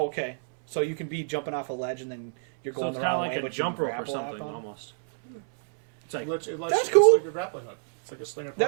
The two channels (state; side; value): silent; left; 59 dB below the other